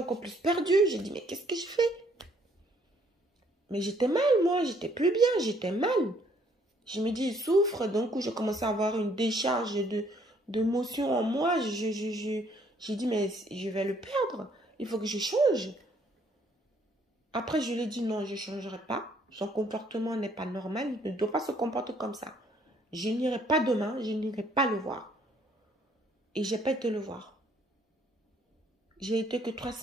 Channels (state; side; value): normal; both; correlation 0.65